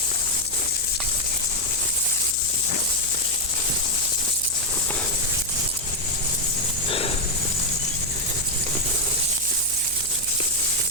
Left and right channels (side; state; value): right; noise; hum, 17 dB below the sound